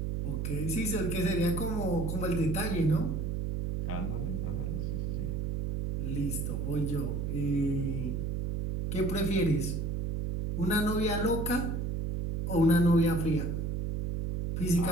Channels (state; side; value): noise; right; hum, 1 dB below the sound